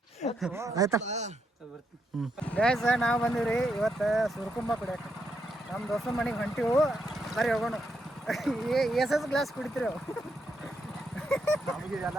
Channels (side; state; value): both; normal; correlation 0.80